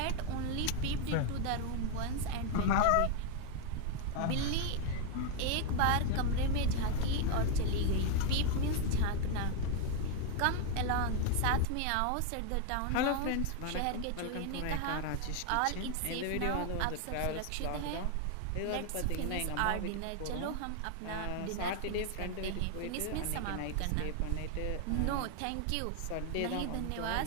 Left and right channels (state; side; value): different; both; correlation 0.01